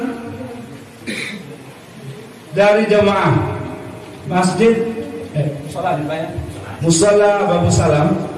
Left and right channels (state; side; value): identical; both; correlation 1.00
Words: dari jamaah masjid musala Babu Salam,